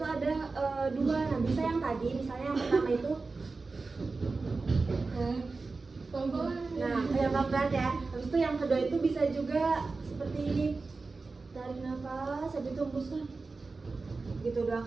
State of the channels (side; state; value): left; quieter; 3.9 dB